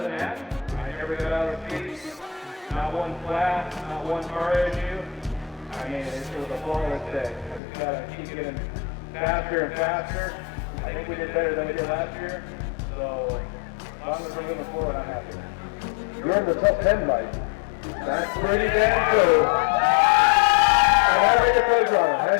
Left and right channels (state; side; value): drops out; right; at 7.6 s